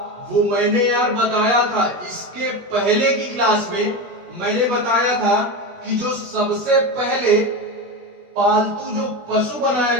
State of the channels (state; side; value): late; left; 16 ms